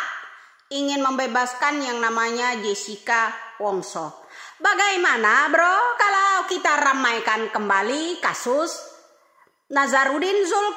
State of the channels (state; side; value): identical; both; correlation 1.00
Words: ingin membebaskan yang namanya Jessica Wongso. Bagaimana bro kalau kita ramaikan kembali kasus Nazarudin